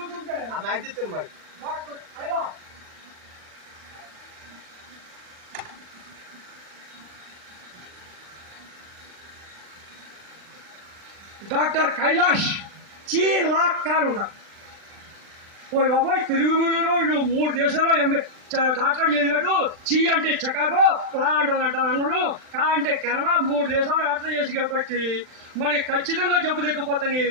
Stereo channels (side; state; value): left; late; 39 ms